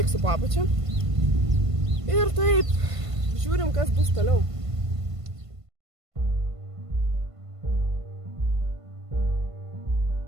po apačia. Ir taip, žiūrim, kas bus toliau.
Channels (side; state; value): left; late; 1.5 ms